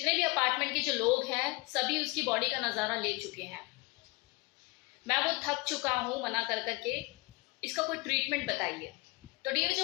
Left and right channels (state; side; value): quieter; right; 26.0 dB